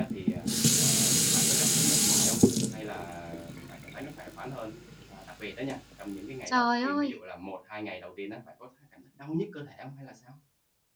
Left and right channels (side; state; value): both; identical; correlation 1.00